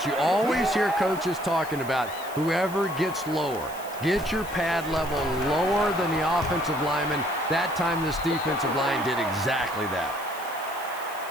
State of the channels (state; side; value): noise; left; hiss, 17 dB below the sound